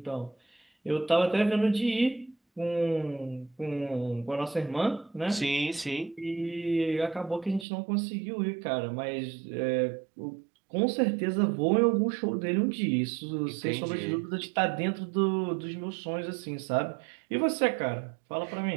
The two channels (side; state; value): left; drops out; at 7.7 s